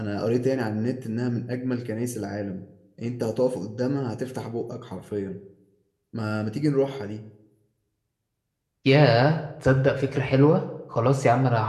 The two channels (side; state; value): both; identical; correlation 1.00